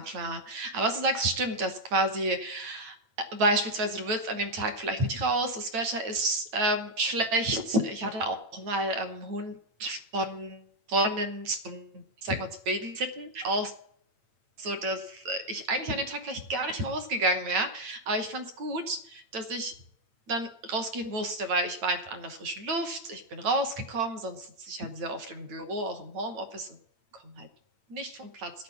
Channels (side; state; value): left; late; 8.9 ms